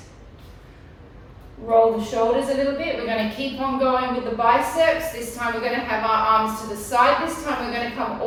Roll the shoulders a little bit. We're going to keep on going with the biceps. This time we're going to have our arms to the side. This time we're going to come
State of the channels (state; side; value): identical; both; correlation 1.00